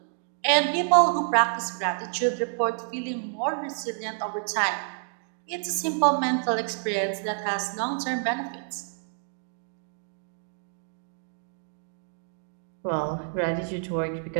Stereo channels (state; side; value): silent; left; digital silence